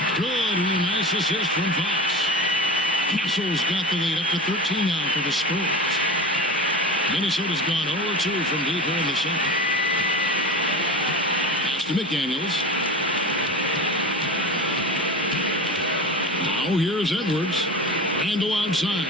Good and a nice assist from Fox. Castle's got the lead up to 13 now for the Spurs. Minnesota's gone 0-2 from deep here in the second. Pass to McDaniels. Now here's Edwards. Randle outside.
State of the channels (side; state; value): both; normal; correlation 0.30